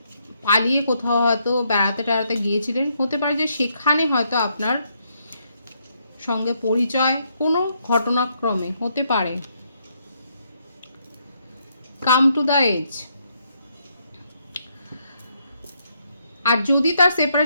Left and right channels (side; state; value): both; inverted; correlation -0.75